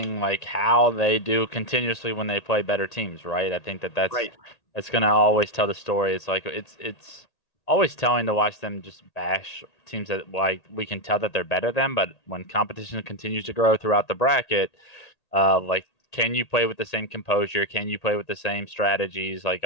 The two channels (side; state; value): right; late; 1.8 ms